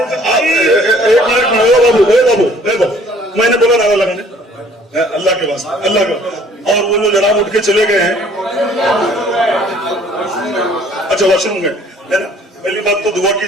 मिनट मैंने बोला ना लगा अल्लाह के वास्ते, अल्लाह का। और वो जो जनाब उठ के चले गए हैं, अच्छा वॉशरूम में है ना। पहली बात तो दुआ की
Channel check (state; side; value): normal; both; correlation 0.56